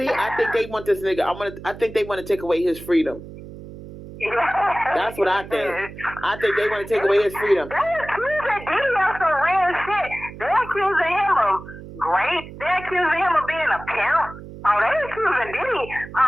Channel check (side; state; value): right; noise; hum, 14 dB below the sound